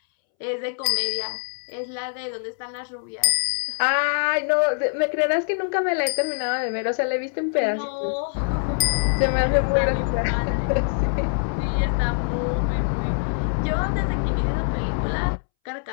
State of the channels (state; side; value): silent; right; 63 dB below the other